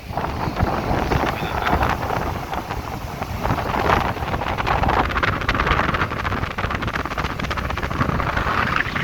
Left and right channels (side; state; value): both; identical; correlation 1.00